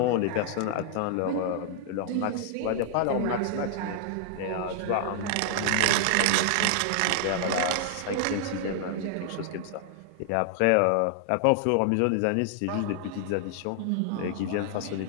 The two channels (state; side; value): different; both; correlation 0.00